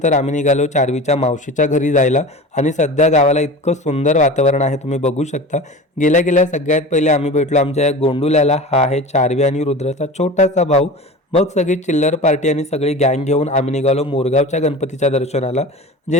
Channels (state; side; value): normal; both; correlation 0.34